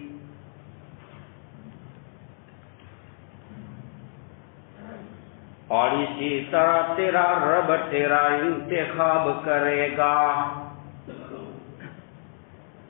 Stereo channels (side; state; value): right; silent; digital silence